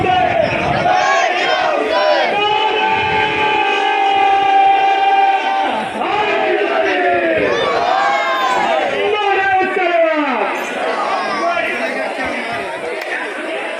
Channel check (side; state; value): both; identical; correlation 1.00